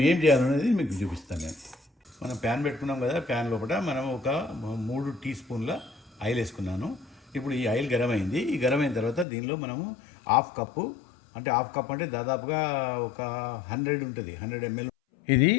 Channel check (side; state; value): right; drops out; at 9.2 s